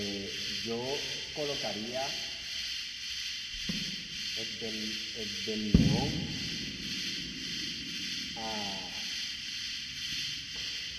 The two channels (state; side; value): identical; both; correlation 1.00